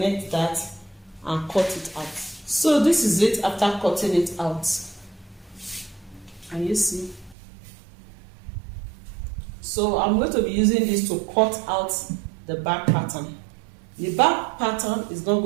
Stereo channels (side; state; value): left; drops out; at 7.4 s